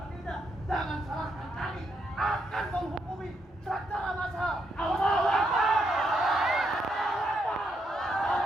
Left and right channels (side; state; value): both; normal; correlation 0.78